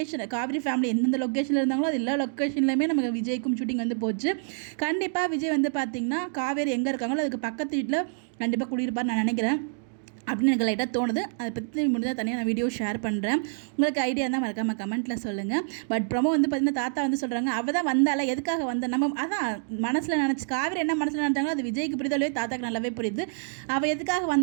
காவேரி ஃபேமிலி எந்தெந்த லொக்கேஷனில் இருந்தாங்களோ அது எல்லா லொக்கேஷன்லையுமே நமக்கு விஜய்க்கும் ஷூட்டிங் வந்து போச்சு. கண்டிப்பாக விஜய் வந்து பார்த்திங்கன்னா காவேரி எங்கே இருக்காங்களோ அதுக்கு பக்கத்து வீட்டில் கண்டிப்பாக குடியிருப்பார் நான் நினைக்கிறேன் அப்படின்னு எனக்கு லைட்டாக தோணுது. அதை பற்றி முடிஞ்சால் தனியாக நான் வீடியோ ஷேர் பண்ணுறேன். உங்களுக்கு ஐடியா இருந்தால் மறக்காமல் கமெண்ட்டில் சொல்லுங்கள். பட் ப்ரொமோ வந்து பார்த்திங்கன்னா தாத்தா வந்து சொல்கிறாங்க, அவள் தான் வந்தால எதுக்காக வந்த நம்ம அதான் மனசில் நினச்சி காவேரி என்ன மனசில் நினச்சாங்களோ அது விஜய்க்கு புரிதலே தாத்தாக்கு நல்லாவே புரியுது. அவள் எதுக்காக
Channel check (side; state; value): left; silent; digital silence